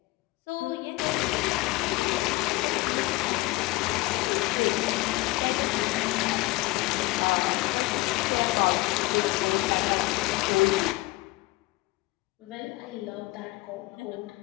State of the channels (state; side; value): quieter; right; 21.3 dB